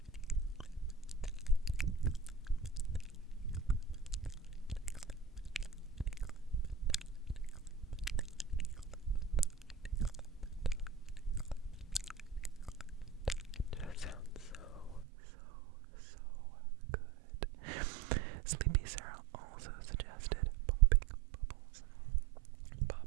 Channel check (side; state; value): left; drops out; at 15.1 s